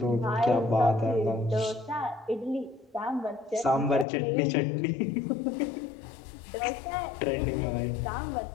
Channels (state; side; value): drops out; right; at 4.0 s